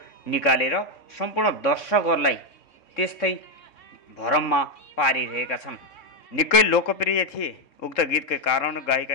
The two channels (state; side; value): late; right; 3.6 ms